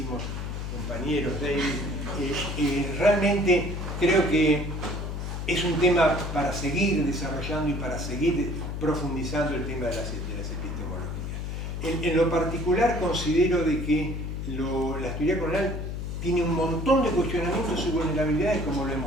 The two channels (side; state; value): left; noise; hum, 4 dB below the sound